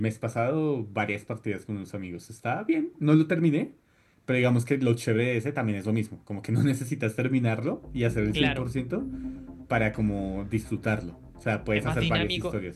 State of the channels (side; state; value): both; identical; correlation 1.00